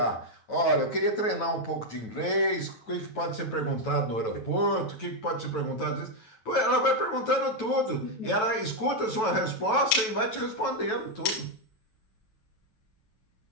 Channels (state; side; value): late; right; 9.2 ms